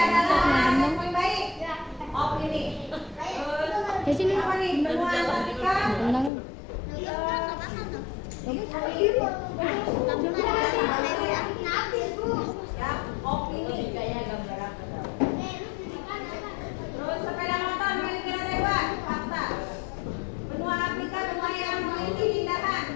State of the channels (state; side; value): drops out; right; at 6.3 s